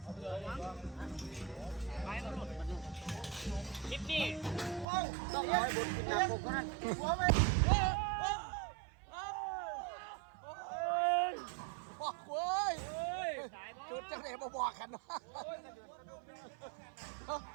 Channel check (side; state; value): left; drops out; at 4.9 s